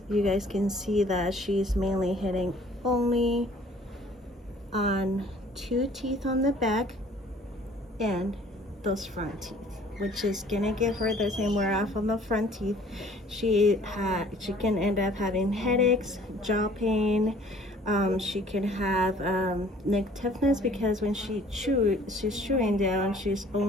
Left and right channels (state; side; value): normal; both; correlation 0.54